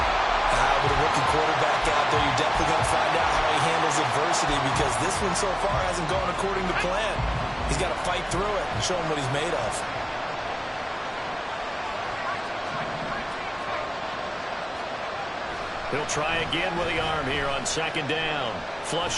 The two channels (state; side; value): identical; both; correlation 1.00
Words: With a rookie quarterback out there, you're definitely going to find out how he handles adversity, because this one so far hasn't gone according to plan. He's got to fight through it and show him what he's made of. He'll try again with the arm here on 2nd down.